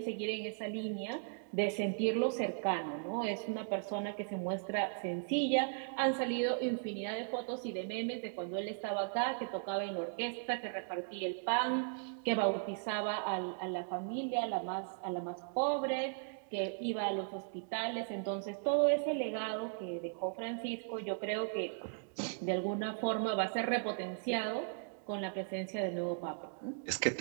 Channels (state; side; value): silent; left; digital silence